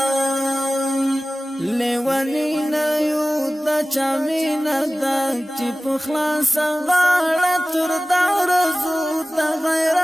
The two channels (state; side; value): normal; both; correlation 0.97